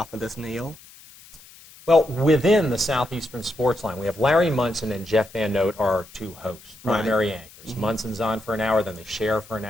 of this, Neil? Well, within the Southeastern Sports Line, we have Larry Munson and Jeff Van Note are our two hosts, primary anchors. Munson's on for an hour, then they share for an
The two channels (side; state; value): left; noise; hiss, 22 dB below the sound